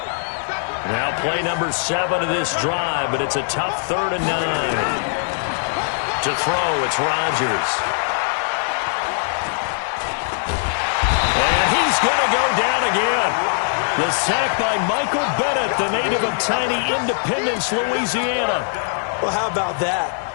Now play number 7 of this drive, but it's a tough 3rd and 9. To throw, it's Rodgers. And he's going to go down again. The sack by Michael Bennett, the native of tiny Independence, Louisiana. Well, how about that?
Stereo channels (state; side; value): silent; right; 61 dB below the other